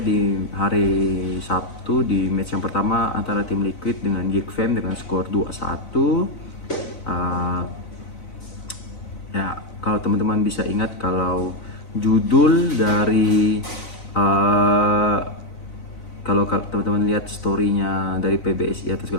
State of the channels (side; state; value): right; late; 4.0 ms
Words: hari Sabtu di match yang pertama antara tim Liquid dengan Geek Fam dengan skor 2-1. Ya, kalau teman-teman bisa ingat, kalau judul dari kalau teman-teman lihat storynya dari PBSI atau